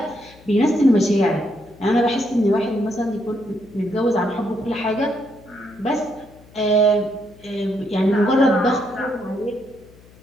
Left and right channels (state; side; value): noise; left; hum, 25 dB below the sound